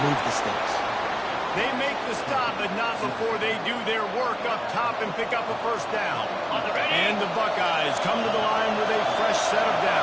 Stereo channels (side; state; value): both; identical; correlation 1.00